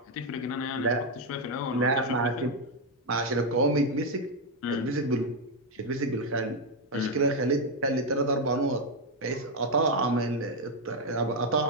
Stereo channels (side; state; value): both; normal; correlation 0.03